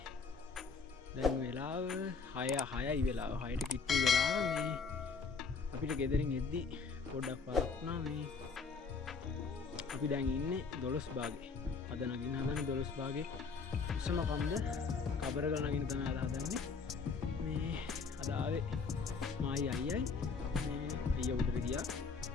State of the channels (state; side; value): quieter; right; 5.0 dB